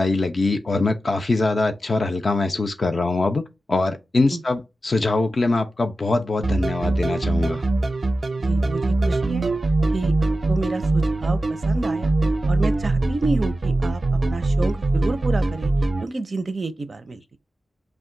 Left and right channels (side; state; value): both; normal; correlation 0.92